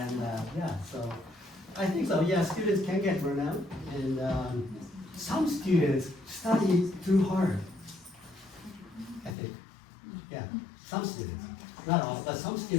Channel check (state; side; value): drops out; right; at 9.3 s